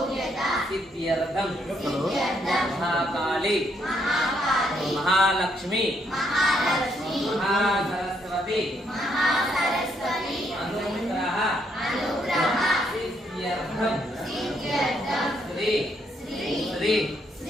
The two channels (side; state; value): both; normal; correlation 0.73